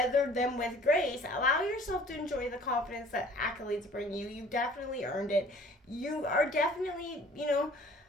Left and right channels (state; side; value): normal; both; correlation 0.52